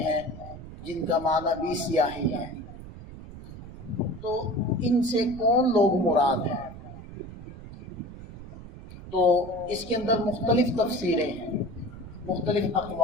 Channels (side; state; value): right; noise; rumble, 14 dB below the sound